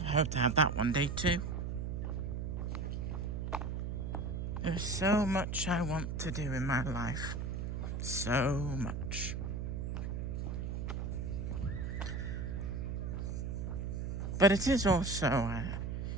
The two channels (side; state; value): right; noise; hum, 3 dB below the sound